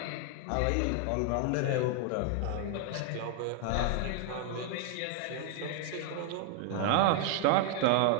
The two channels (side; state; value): both; different; correlation 0.00